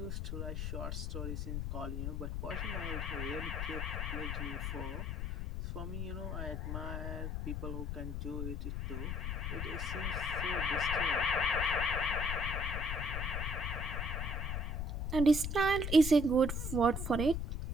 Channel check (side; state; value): left; noise; rumble, 2 dB below the sound